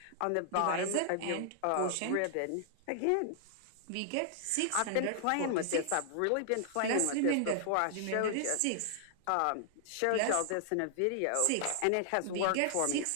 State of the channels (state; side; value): different; both; correlation -0.01